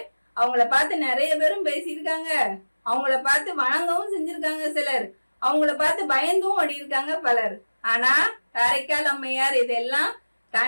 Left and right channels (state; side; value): inverted; both; correlation -1.00